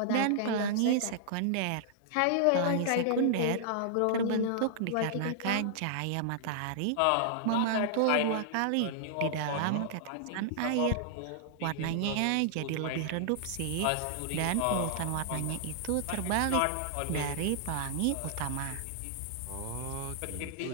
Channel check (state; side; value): different; both; correlation -0.01